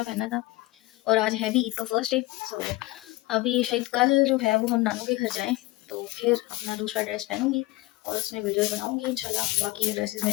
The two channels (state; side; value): quieter; right; 20.1 dB